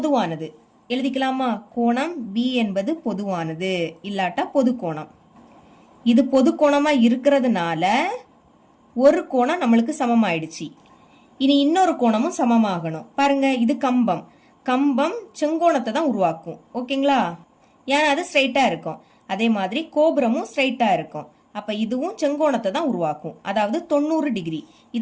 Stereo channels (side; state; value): both; identical; correlation 1.00